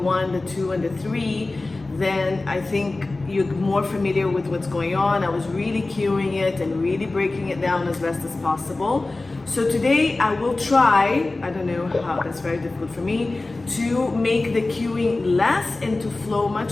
the 2, and the 3, then I think you're more familiar with what's going on. I was really cueing it and really breaking it down as best as possible. So today I will try, I don't know how, that's very difficult for me, to make the cueing less and to flow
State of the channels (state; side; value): quieter; right; 3.2 dB